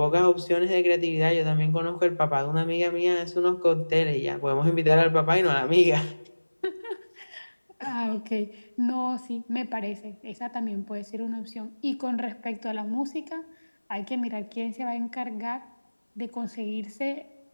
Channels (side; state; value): both; inverted; correlation -1.00